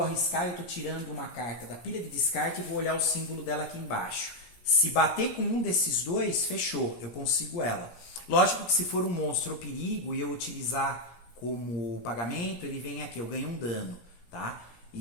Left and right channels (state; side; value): late; right; 17 ms